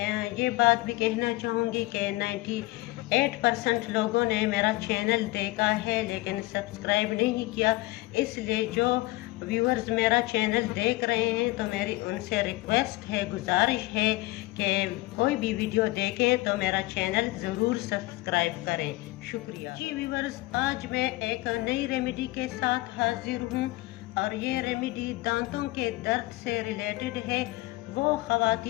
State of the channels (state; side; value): quieter; right; 20.2 dB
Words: ये बात भी कहना चाहूँगी कि 98% लोगों ने मेरा चैनल देखा है लेकिन सब्सक्राइब नहीं किया। इसलिए जो व्यूअर्स मेरा चैनल देख रहे हैं तो मेरी उनसे रिक्वेस्ट है, गुजारिश है कि कोई भी वीडियो देखें तो मेरा चैनल ज़रूर सब्सक्राइब करें। शुक्रिया। जी व्यूअर्स, आज मैं एक नई रेमेडी के साथ हाजिर हूँ और ये रेमेडी दांतों के दर्द से रिलेटेड है। वो